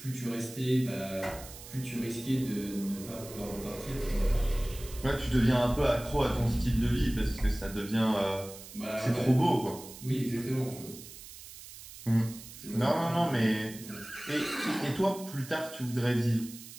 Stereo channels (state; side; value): noise; right; hiss, 15 dB below the sound